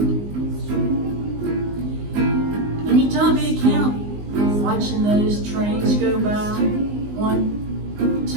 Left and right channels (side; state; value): left; late; 19 ms